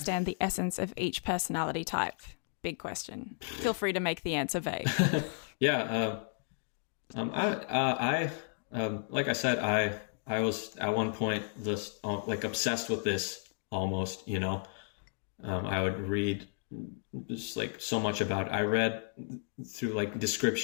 the essence of each personality type? Big question. Feel free to make the answer vague. Yeah. I like I said, I was at one point just like obsessed with this almost, you know. I would read just like so much about it. I read through like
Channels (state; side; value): silent; right; 55 dB below the other